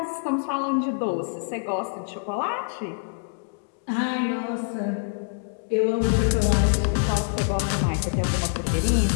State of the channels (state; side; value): silent; right; digital silence